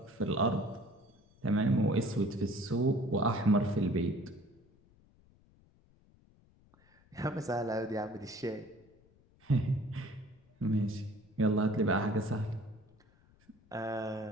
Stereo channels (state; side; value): noise; left; rumble, 30 dB below the sound